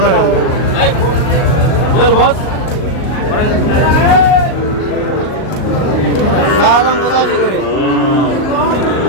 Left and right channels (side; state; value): right; late; 38 ms